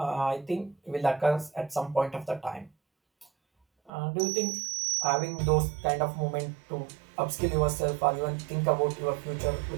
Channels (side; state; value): left; drops out; at 3.9 s